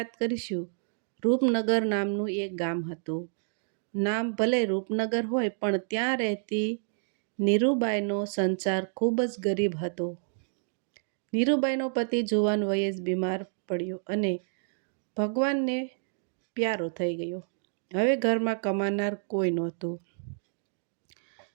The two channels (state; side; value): silent; left; digital silence